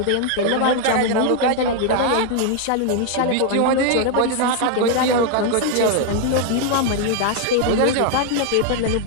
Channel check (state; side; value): different; both; correlation 0.00